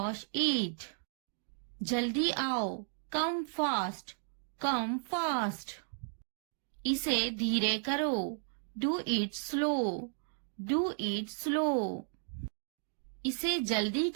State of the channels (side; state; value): left; silent; digital silence